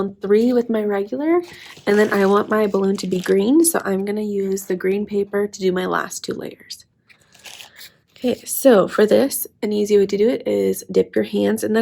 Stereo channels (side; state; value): both; identical; correlation 1.00